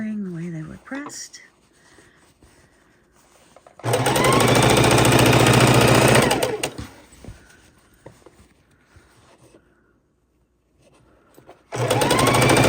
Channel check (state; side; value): identical; both; correlation 1.00